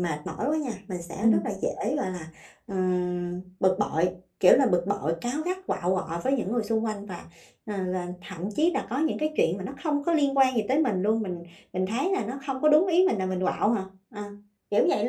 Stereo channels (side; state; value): both; identical; correlation 1.00